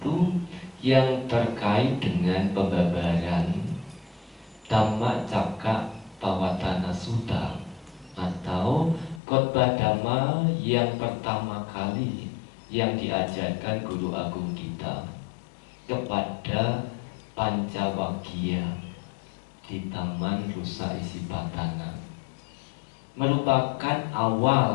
yang terkait dengan pembabaran Dhammacakkappavattana Sutta, atau khotbah Dhamma yang pertama kali yang diajarkan Guru Agung kita kepada Pancawaggiya di Taman Rusa Isipatana, merupakan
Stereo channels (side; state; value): right; drops out; at 9.2 s